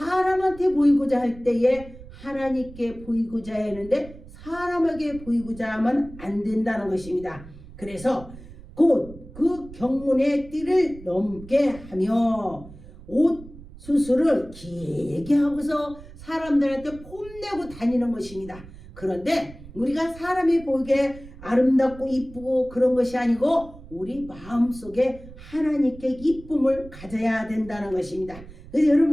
보이고자 할 때에 하나님께 보이고자 했는데 사람에게 보이고자 하면 안 된다는 것입니다. 그래서 곧 그 경문의 띠를 넘게 하며 옷 수술을 길게 하고서 사람들한테 폼내고 다니는 것입니다. 그런데 우리가 사람이 보이게 아름답고 이쁘고 그런 것이 아니고 우리 마음속에 하나님께 이쁨을 가져야 된다는 것입니다. 그래서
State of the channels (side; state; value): right; noise; rumble, 17 dB below the sound